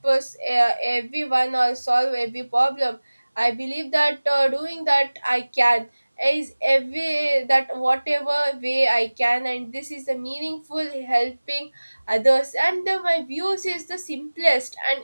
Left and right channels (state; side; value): inverted; both; correlation -1.00